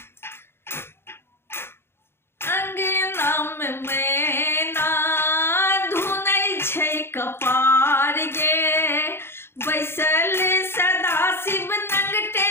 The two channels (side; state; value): right; late; 0.12 ms